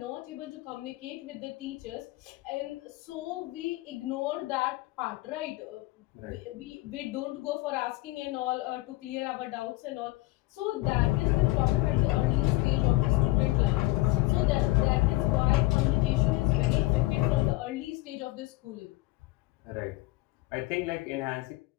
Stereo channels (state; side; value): quieter; right; 20.1 dB